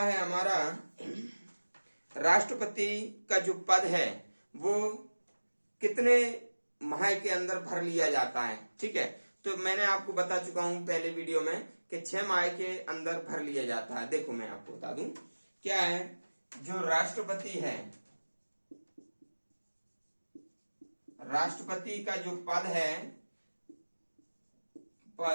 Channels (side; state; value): both; inverted; correlation -1.00